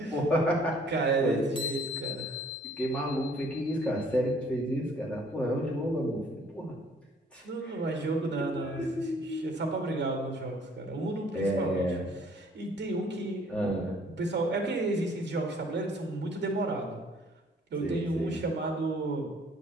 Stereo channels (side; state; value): both; normal; correlation 0.58